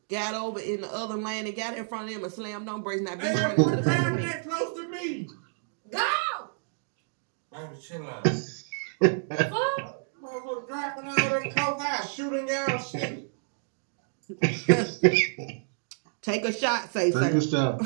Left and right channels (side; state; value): left; silent; digital silence